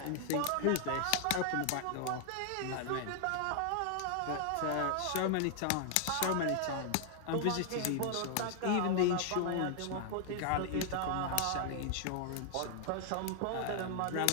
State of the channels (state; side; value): different; both; correlation 0.00